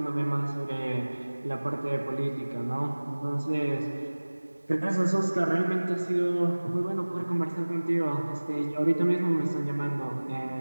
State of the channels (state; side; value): inverted; both; correlation -1.00